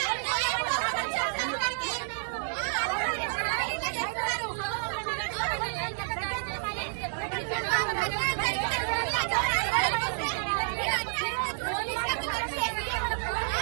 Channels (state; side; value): silent; left; digital silence